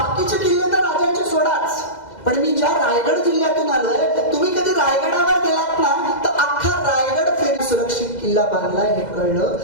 किल्ले तर राजांचे सोडाच, पण मी ज्या रायगड जिल्ह्यातून आलोय, तुम्ही कधी रायगडावर गेलात ना तर अख्खा रायगड फेरी सुरक्षित किल्ला बांधलाय हे कळलं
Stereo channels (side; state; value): right; late; 2.0 ms